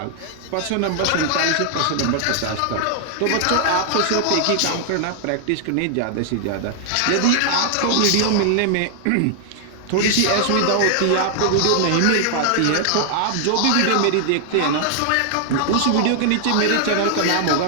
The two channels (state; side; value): different; both; correlation 0.00